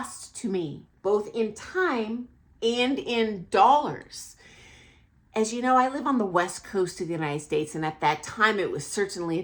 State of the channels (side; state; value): both; identical; correlation 1.00